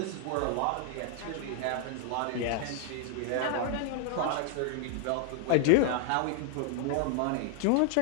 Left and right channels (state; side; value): different; both; correlation 0.00